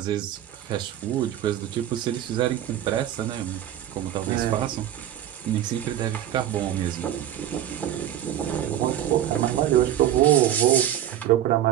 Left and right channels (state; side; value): quieter; left; 11.6 dB